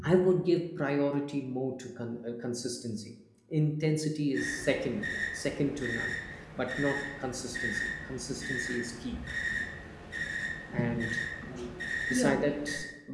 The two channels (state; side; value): identical; both; correlation 1.00